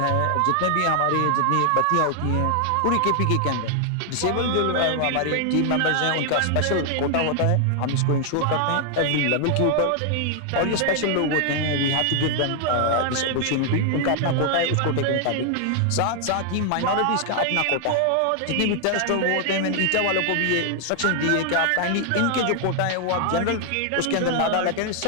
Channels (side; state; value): both; different; correlation 0.00